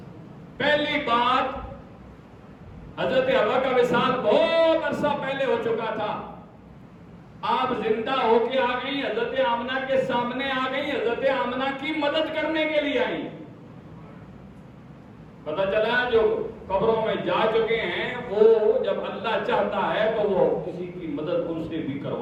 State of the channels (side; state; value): both; identical; correlation 1.00